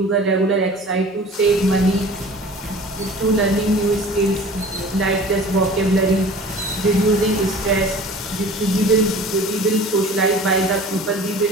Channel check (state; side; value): normal; both; correlation 0.43